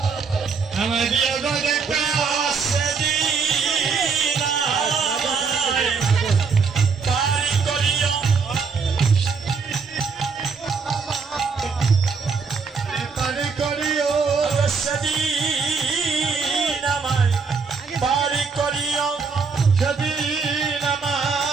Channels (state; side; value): quieter; left; 5.2 dB